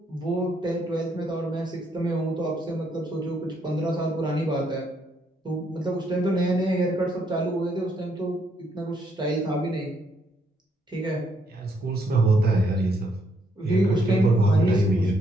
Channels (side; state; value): both; normal; correlation 0.73